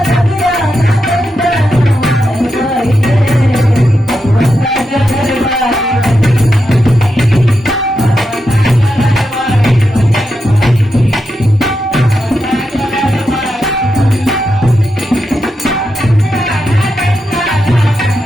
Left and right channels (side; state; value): both; normal; correlation 0.86